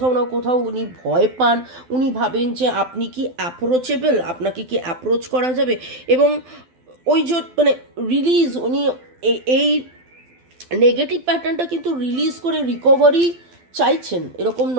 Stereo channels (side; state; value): left; late; 12 ms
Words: না কোথাও উনি ভয় পান, উনি ভাবেন যে আপনি কি অ্যাপ্রোচেবল, আপনাকে কি অ্যাপ্রোচ করা যাবে, এবং ওই যে মানে রিলিজ উনি এই নেগেটিভ প্যাটার্নটা কিন্তু রিলিজ করে রিকভারি চাইছেন। এরকম